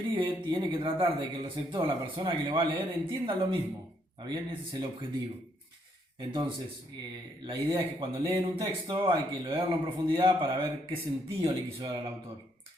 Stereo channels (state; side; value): normal; both; correlation 0.72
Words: tiene que tratar de que el receptor, la persona que lo va a leer, entienda lo mismo. ¿Está bien? Ese es el objetivo. Entonces, la idea es que cuando leen un texto hay que leerlo en profundidad para ver qué sentido le quiso dar al autor.